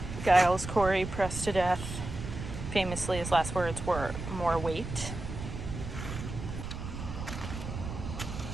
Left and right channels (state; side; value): noise; right; rumble, 7 dB below the sound